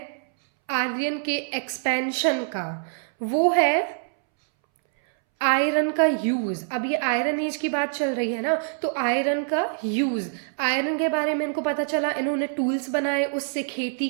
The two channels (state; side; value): silent; left; 62 dB below the other